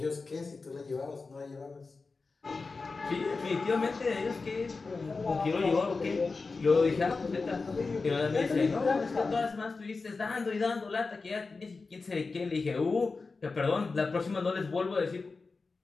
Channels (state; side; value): quieter; right; 4.1 dB